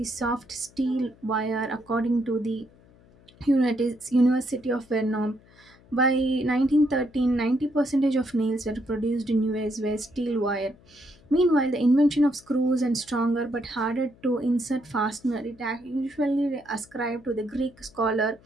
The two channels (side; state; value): left; noise; hum, 27 dB below the sound